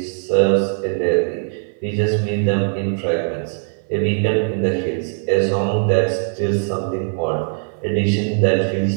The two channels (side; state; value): left; silent; 61 dB below the other